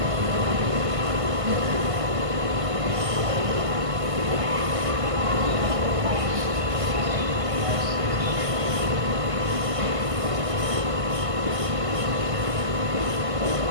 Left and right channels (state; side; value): late; left; 1.5 ms